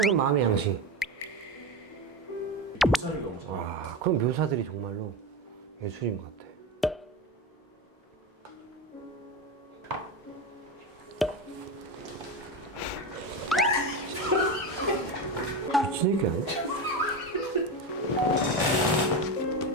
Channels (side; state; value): both; normal; correlation 0.19